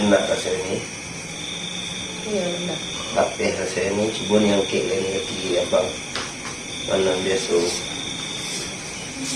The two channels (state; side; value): identical; both; correlation 1.00